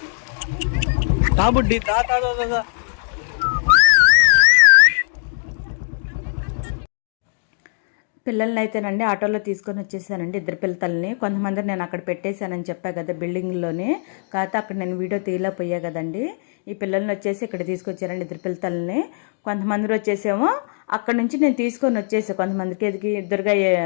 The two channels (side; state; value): right; silent; digital silence